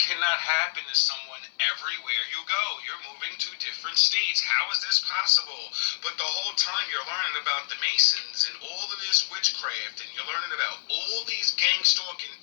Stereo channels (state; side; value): silent; right; 60 dB below the other